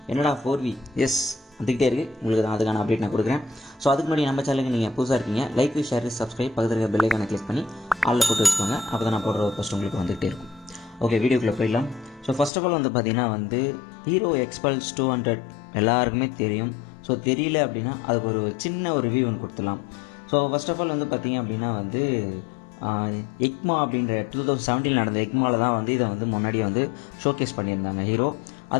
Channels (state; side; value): drops out; right; at 12.5 s